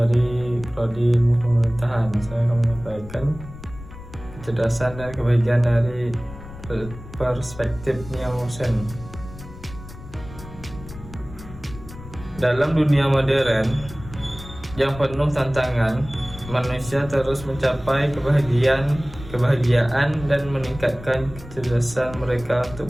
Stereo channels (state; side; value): noise; left; rumble, 15 dB below the sound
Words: Prodi Ilmu Pemerintahan. Saya akan menyampaikan kecerdasan dan kebahagiaan dari perspektif Nielsen. Dalam dunia modern yang penuh tantangan, manusia terus mencapai kebahagiaan dan meningkatkan kecerdasan mereka